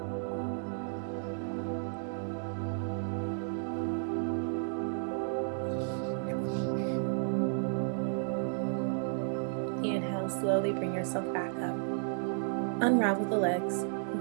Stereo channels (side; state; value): left; silent; digital silence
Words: Inhale, slowly bring yourself back up. Unravel the legs and